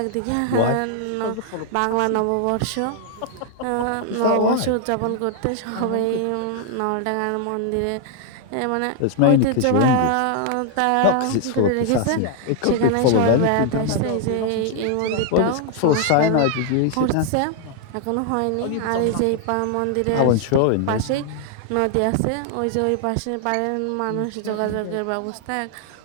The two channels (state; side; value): different; both; correlation 0.00